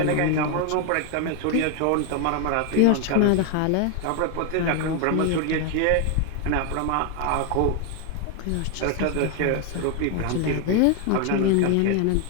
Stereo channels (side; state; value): both; different; correlation 0.01